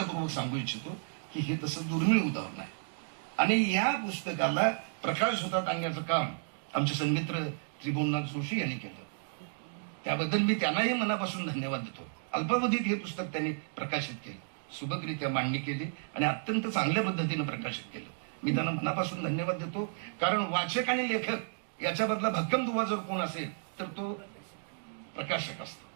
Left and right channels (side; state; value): left; silent; digital silence